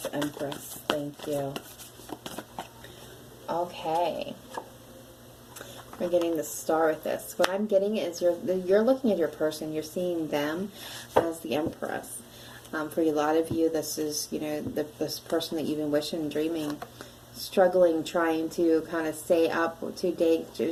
Empress? Thank you. Okay. We're getting the Star with this. What I'm getting is you're looking at your person. You're seeing them as the Empress. For a lot of you, this is, you know, this person that you've been wishing, dreaming, struggling, trying to kind of stay up to date,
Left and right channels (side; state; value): both; identical; correlation 1.00